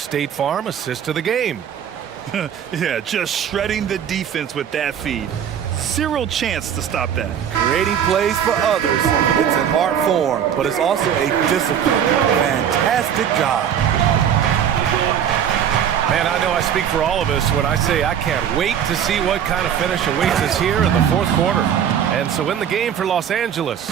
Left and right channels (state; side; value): quieter; left; 8.9 dB